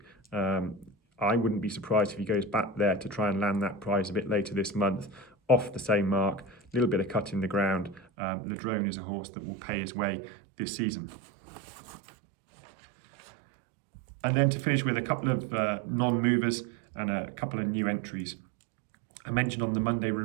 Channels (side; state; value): left; drops out; at 8.1 s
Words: I wouldn't be surprised if he goes back there to try and land that prize a bit later this month, off the same mark, a little bit of cut in the ground. Ladronne is a horse that will pay his way this season. And then to finish with a couple of non-movers and a couple of new entries. I mentioned on the Monday